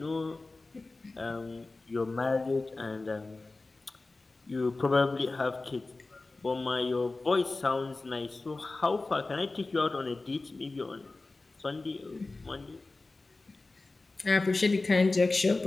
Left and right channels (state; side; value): quieter; right; 3.3 dB